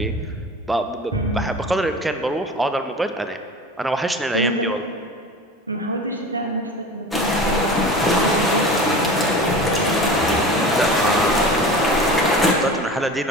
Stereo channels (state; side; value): normal; both; correlation 0.35